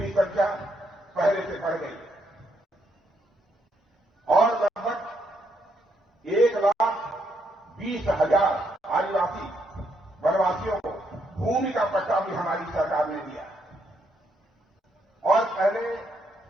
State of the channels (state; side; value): normal; both; correlation 0.75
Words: संख्या पहले से बढ़ गई है और लगभग 1,20,000 आदिवासी वनवासियों को भूमि का पट्टा भी हमारी सरकार ने दिया। और पहले